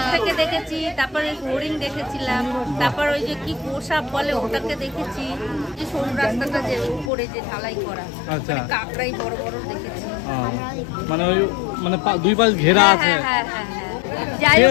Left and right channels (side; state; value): right; drops out; at 7.1 s